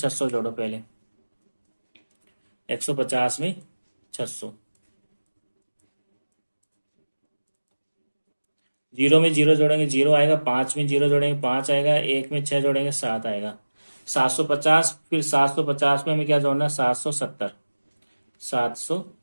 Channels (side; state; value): both; inverted; correlation -1.00